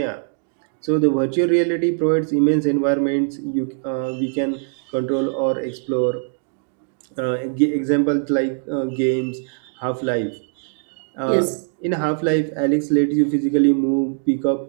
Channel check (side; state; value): left; silent; 65 dB below the other